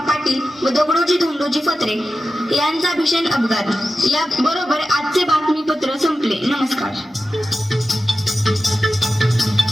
पाटील व दगडोजी धोंडोजी फत्रे यांचा भीषण अपघात. या बरोबर आजचे बातमीपत्र संपले. नमस्कार.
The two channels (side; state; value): both; normal; correlation 0.93